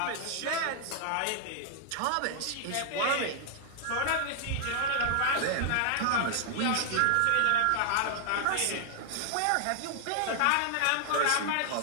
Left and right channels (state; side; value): different; both; correlation 0.00